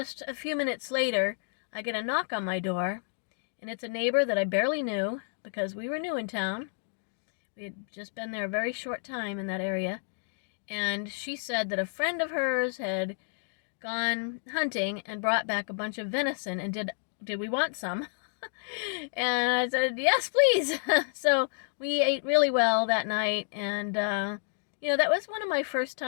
a few minutes later, I get a knock on my door, and it's a neighbor that I barely knew because we were new in town. We had just been there a very short time in that area. And she said that a friend of hers had gone hunting and brought back a bunch of venison, and did we want some? And I said, yes, please. So we ate really well that night. And, that was one of my first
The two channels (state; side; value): silent; right; digital silence